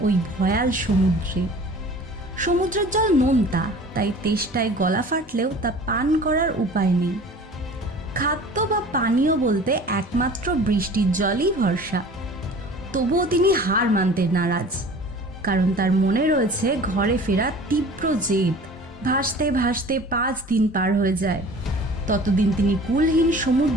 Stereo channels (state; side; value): normal; both; correlation 0.44